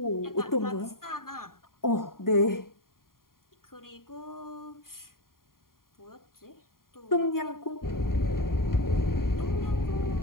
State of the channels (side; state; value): right; late; 0.91 ms